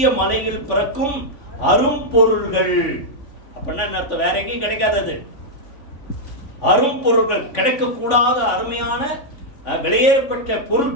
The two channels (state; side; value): late; right; 3.5 ms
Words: மலையில் பிறக்கும் அரும்பொருள்கள். அப்படின்னா என்ன அர்த்தம்? வேற எங்கேயும் கிடைக்காதது. அரும்பொருள்கள், கிடைக்க கூடாத அருமையான விலையேறப்பட்ட